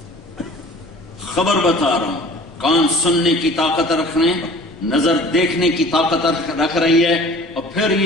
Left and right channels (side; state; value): both; normal; correlation 0.46